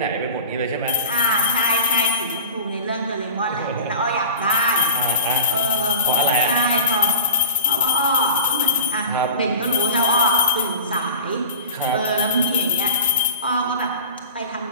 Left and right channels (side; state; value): both; inverted; correlation -0.36